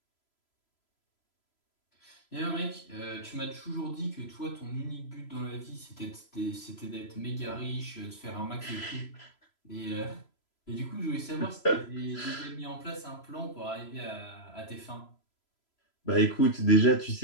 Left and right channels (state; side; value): late; right; 3.0 ms